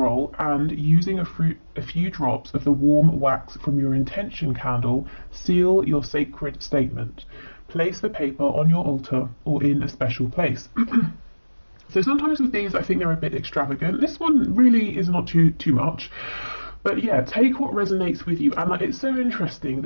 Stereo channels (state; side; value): inverted; both; correlation -1.00